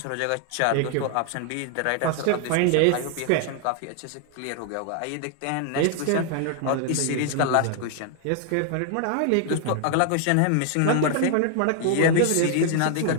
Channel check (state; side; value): different; both; correlation 0.00